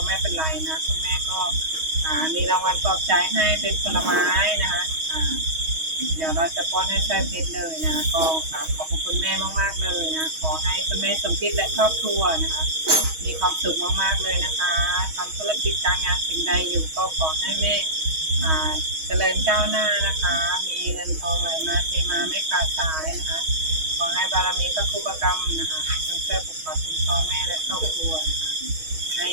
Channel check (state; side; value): late; left; 6.3 ms